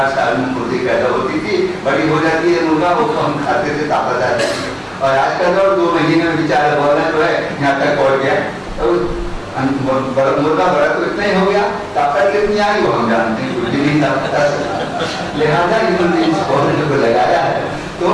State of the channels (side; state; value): both; identical; correlation 1.00